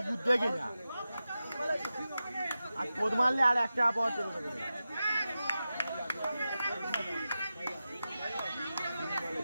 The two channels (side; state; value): both; inverted; correlation -0.92